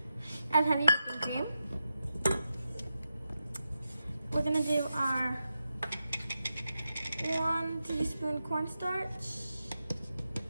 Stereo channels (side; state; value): both; inverted; correlation -0.89